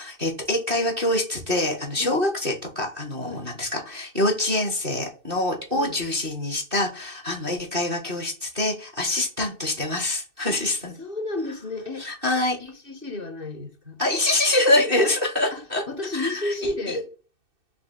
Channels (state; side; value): late; left; 2.6 ms